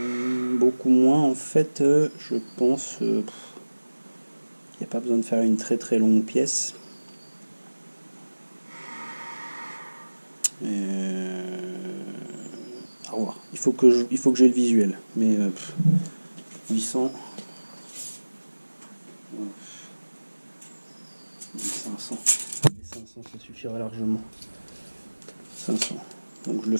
Beaucoup moins en fait, je pense. Il n'y a pas besoin de faire une très très longue pièce. Au revoir. Il faut que j'ai le visuel. Mais 800. 500. 500, ça suffira largement. 500. Donc je le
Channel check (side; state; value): both; inverted; correlation -1.00